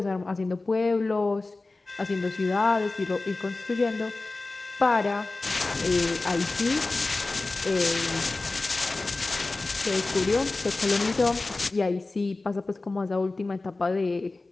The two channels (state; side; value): quieter; right; 3.3 dB